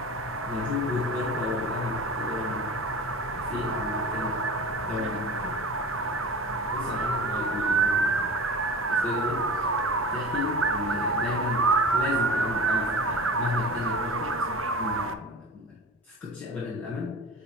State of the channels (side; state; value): both; normal; correlation 0.34